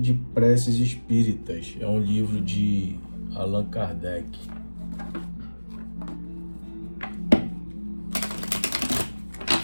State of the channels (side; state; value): both; inverted; correlation -1.00